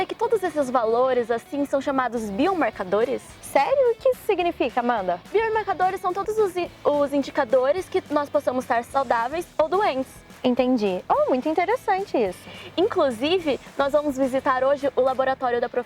que todos esses valores assim são chamados biomarcadores? Sério? O que isso significa, Amanda? Biomarcadores são todos os indicadores que nós possamos estar saudáveis ou doentes. Entendi. Oh, muito interessante isso. Inclusive, nós vamos visitar hoje o laboratório da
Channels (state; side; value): identical; both; correlation 1.00